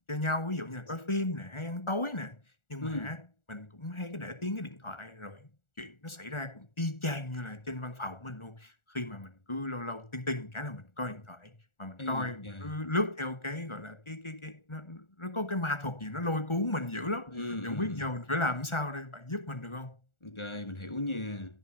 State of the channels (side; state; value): right; late; 1.4 ms